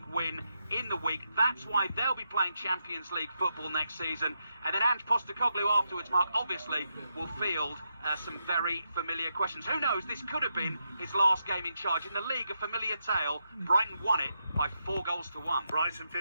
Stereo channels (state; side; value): inverted; both; correlation -0.83